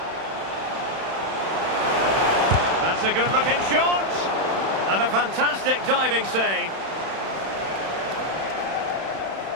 That's a good looking shot. And a fantastic diving save.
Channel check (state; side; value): late; left; 31 ms